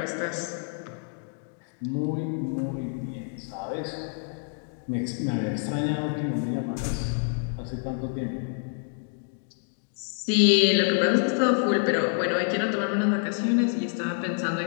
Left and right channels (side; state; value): right; silent; 56 dB below the other